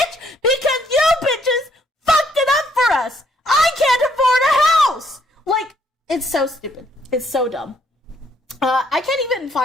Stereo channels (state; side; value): normal; both; correlation 0.69